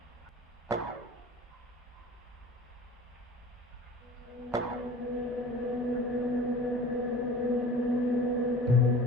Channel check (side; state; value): both; normal; correlation 0.41